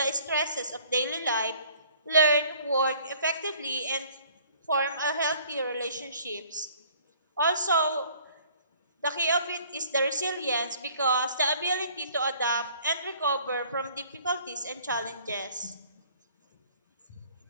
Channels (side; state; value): both; inverted; correlation -0.55